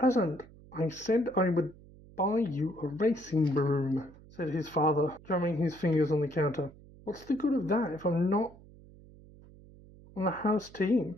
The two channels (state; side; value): noise; right; hum, 22 dB below the sound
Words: "I said I would buy you a racing broom," said his father, drumming his fingers on the counter. "What's the good of that if I'm not on the house